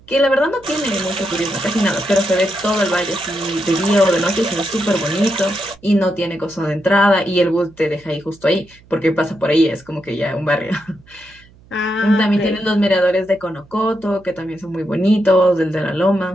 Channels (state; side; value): noise; right; hum, 27 dB below the sound